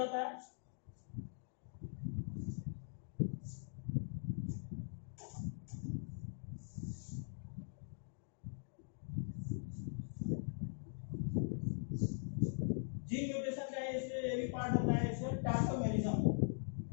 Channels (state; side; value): silent; right; digital silence